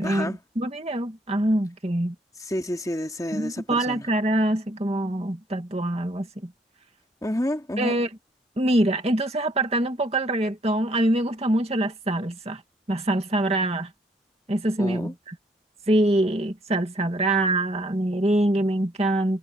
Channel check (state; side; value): normal; both; correlation 0.67